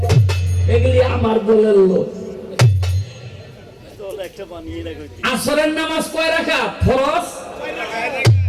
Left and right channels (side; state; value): both; identical; correlation 1.00